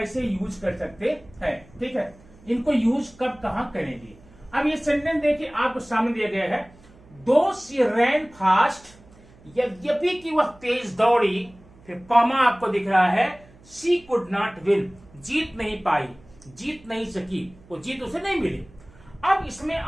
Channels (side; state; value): right; noise; hum, 25 dB below the sound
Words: यूज कर सकते हैं। ठीक है, इनको यूज कब कहां करेंगे। अब ये सेंटेंस देखिए आपको सामने दिया गया है, दो शी रैन फास्ट, यद्यपि कि वह तेज दौड़ी, फिर कॉमा आपको दिख रहा है, शी कुड नॉट विन, जीत नहीं पाई, जीत नहीं सकी, वो जीत उसे नहीं मिली। अब इसमें